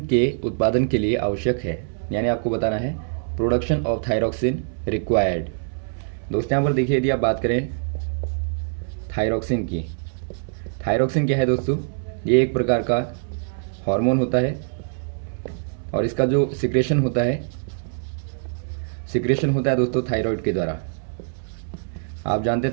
के उत्पादन के लिए आवश्यक है, यानी आपको बताना है प्रोडक्शन ऑफ थायरॉक्सिन रिक्वायर्ड। दोस्तों यहाँ पर देखिए, यदि आप बात करें थायरॉक्सिन की, थायरॉक्सिन क्या है दोस्तों, ये एक प्रकार का हार्मोन होता है और इसका जो सिक्रेशन होता है दोस्तों थायराइड के द्वारा। आप जानते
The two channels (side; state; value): left; silent; 63 dB below the other